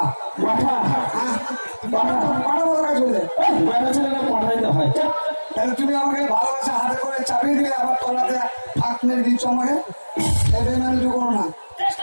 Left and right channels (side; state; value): both; inverted; correlation -1.00